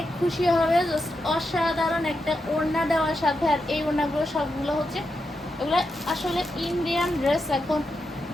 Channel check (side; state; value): both; normal; correlation 0.86